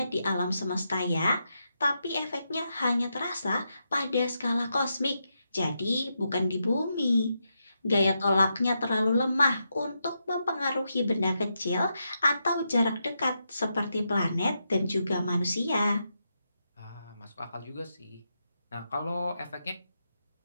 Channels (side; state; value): both; inverted; correlation -0.84